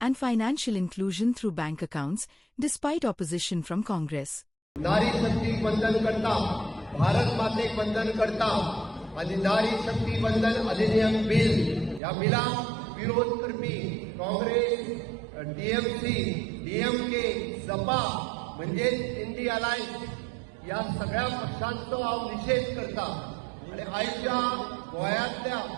and financial inclusion through bank accounts, despite opposition from Congress. नारी शक्ती वंदन करता, भारत मातेक वंदन करता आणि नारी शक्ती वंदन अधिनियम bill या बिला विरोध करपी काँग्रेस, टीएमसी, डीएमके, सपा म्हणजे इंडी अलायन्स या सगळ्या पक्षांचो हांव निषेध करता आणि आयच्या गोंयांतल्या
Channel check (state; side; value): drops out; left; at 12.0 s